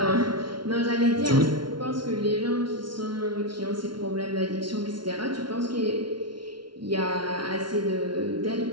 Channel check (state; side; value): late; left; 0.72 ms